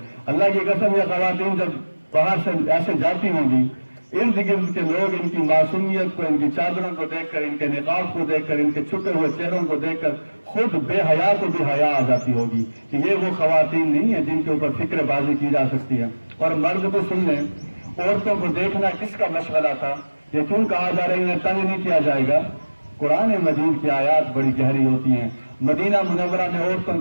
اللہ کی قسم یہ خواتین جب باہر سے ایسے جاتی ہوں گی، ارد گرد کے لوگ ان کی معصومیت کو، ان کی چادروں کو دیکھ کر، ان کے نقاب کو دیکھ کر، ان کے چھپے ہوئے چہروں کو دیکھ کر خود بے حیا کو بھی حیا آ جاتی ہوگی کہ یہ وہ خواتین نہیں ہیں جن کے اوپر فکر بازی کی جا سکتی ہے۔ اور مرد کو سن لیں، عورتوں کو دیکھنا کس کا مشغلہ تھا؟ یہ کیوں کہا جا رہا ہے انہیں تنگ نہیں کیا جائے گا؟ قرآن مجید کی آیات بڑی گہری ہوتی ہیں۔ مدینہ منورہ میں عورتوں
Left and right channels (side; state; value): both; inverted; correlation -1.00